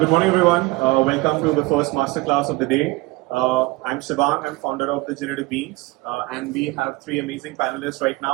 Good morning, everyone. Welcome to the first masterclass of the day. I'm Shivang. I'm founder of the Generative Beans, and we have three amazing panelists right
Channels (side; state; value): left; quieter; 22.0 dB